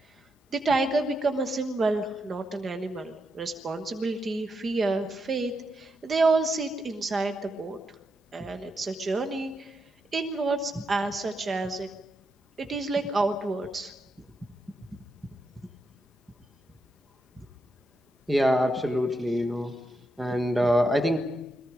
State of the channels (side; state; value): both; normal; correlation 0.84